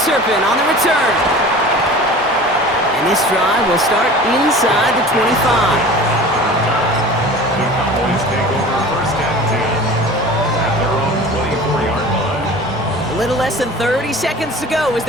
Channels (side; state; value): right; noise; rumble, 24 dB below the sound